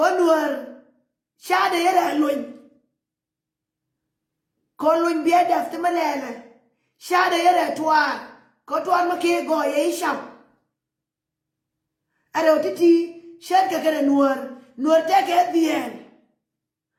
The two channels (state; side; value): identical; both; correlation 1.00